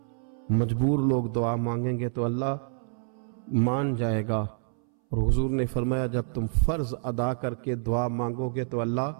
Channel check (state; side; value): silent; left; 60 dB below the other